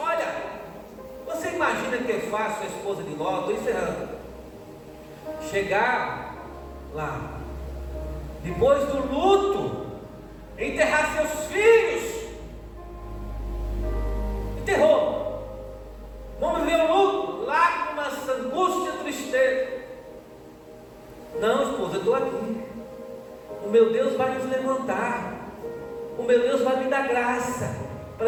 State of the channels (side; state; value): both; identical; correlation 1.00